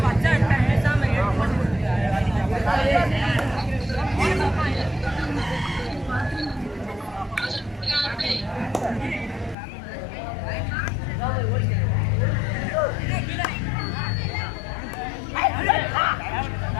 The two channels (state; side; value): drops out; right; at 9.6 s